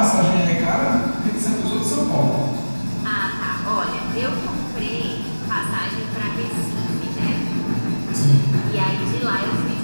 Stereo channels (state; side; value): inverted; both; correlation -1.00